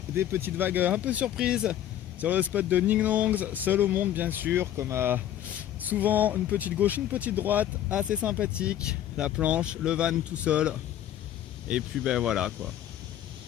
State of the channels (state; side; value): quieter; right; 11.5 dB